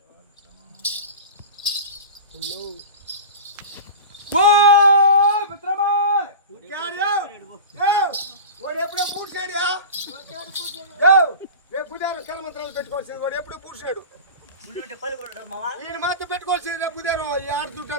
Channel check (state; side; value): inverted; both; correlation -0.31